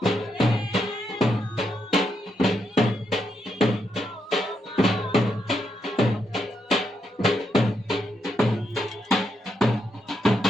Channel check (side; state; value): both; normal; correlation 0.81